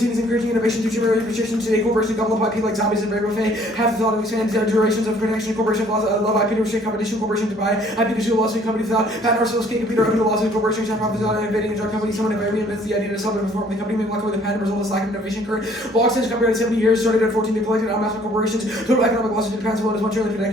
as encouraging innovation through generate restrictions. Today, corporations gobble up IP like zombies and very buffet. Have the thought of expand durations of protection. Corporation laws love IP to restrict competition. Corporation to buy IP to sue lawsuit companies without patent ourselves can't compete or open to lawsuit. Corporations have profits without innovating a drug company. Someone reinvents the idea to sell and perform. The company may walk away with the patent result of lack of innovation. Current law extension copyright 70 years started at 14. They collected on massive corporations. Total economic losses in patents alone is 1 trillion. Per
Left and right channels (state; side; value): normal; both; correlation 0.58